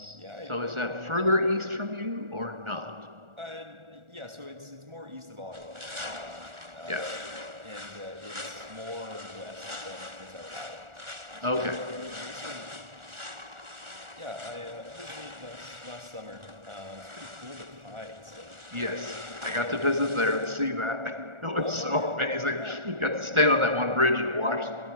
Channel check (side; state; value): left; late; 1.4 ms